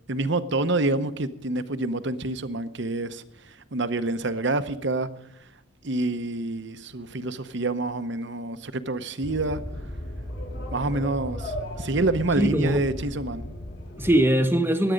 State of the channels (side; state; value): both; normal; correlation 0.45